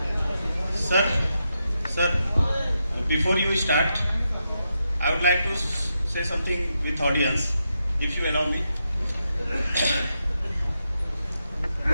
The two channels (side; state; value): both; inverted; correlation -0.85